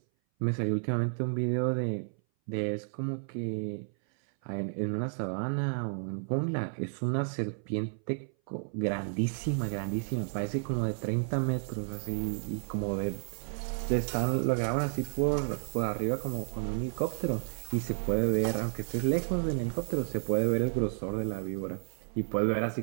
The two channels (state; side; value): silent; left; 57 dB below the other